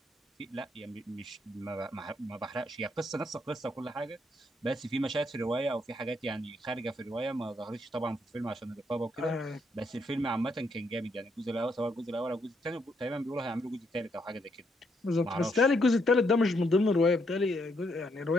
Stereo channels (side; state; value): both; normal; correlation 0.75